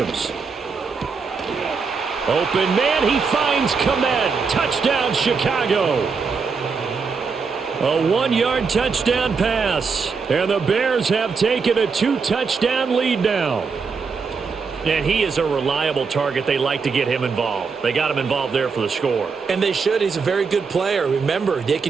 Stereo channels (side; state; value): left; quieter; 5.2 dB